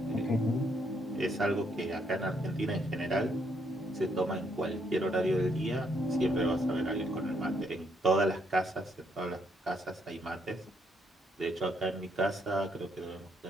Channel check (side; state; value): both; normal; correlation 0.73